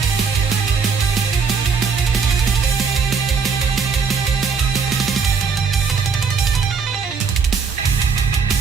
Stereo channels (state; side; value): quieter; left; 5.7 dB